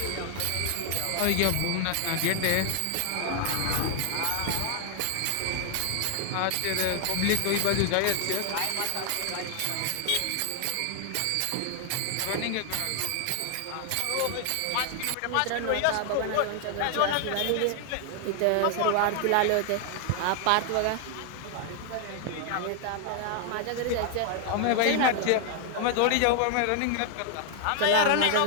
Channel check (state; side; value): different; both; correlation 0.00